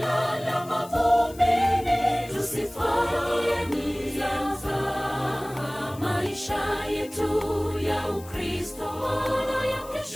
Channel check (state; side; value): noise; left; hiss, 20 dB below the sound